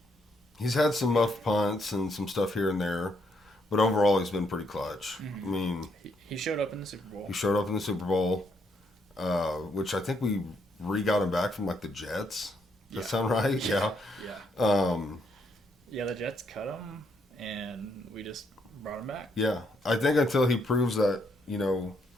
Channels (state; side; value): normal; both; correlation 0.74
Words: had some muff punts and some stuff here and there, but overall he's been pretty clutch. I mean, he showed up in the Super Bowl. he showed up in the Super Bowl, which I think we got him back from like the Jets. Does that sound right? Yeah. Yeah. Yeah, the Jets cut him, and we just brought him back. Yeah. I think until he proves that,